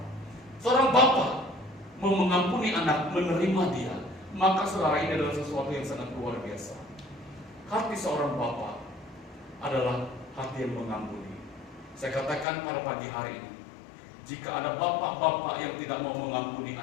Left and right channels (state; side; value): drops out; right; at 12.5 s